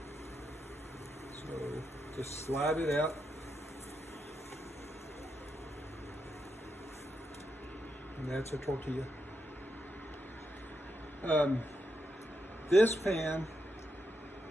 So just slide it out. And that's a tortilla. This pan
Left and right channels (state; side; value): normal; both; correlation 0.83